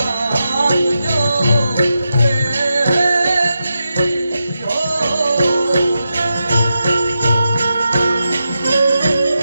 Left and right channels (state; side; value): inverted; both; correlation -0.88